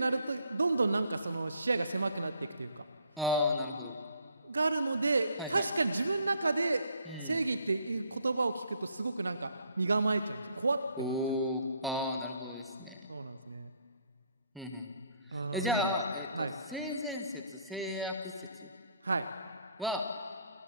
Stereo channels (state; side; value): inverted; both; correlation -0.65